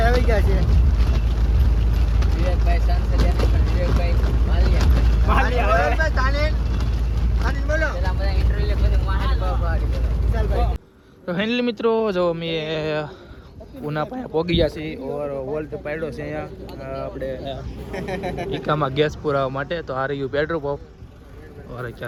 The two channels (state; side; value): identical; both; correlation 1.00